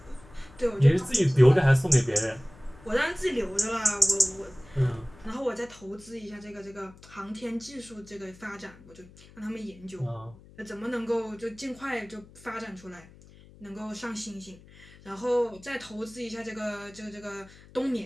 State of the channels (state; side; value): noise; left; hum, 22 dB below the sound